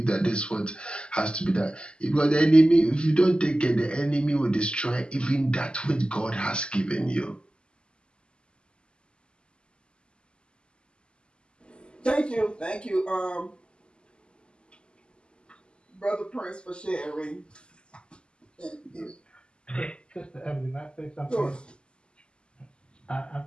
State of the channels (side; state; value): right; late; 0.051 ms